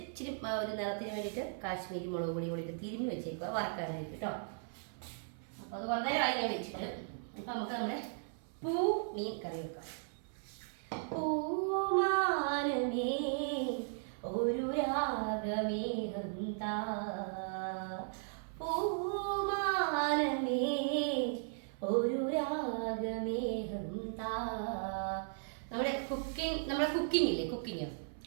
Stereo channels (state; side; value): silent; left; 53 dB below the other